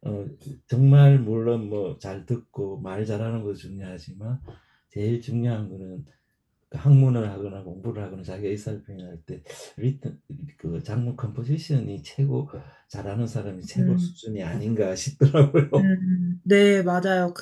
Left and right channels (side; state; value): both; identical; correlation 1.00